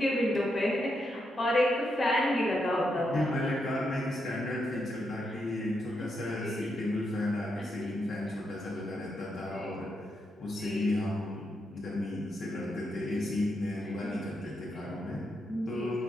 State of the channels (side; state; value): both; normal; correlation 0.82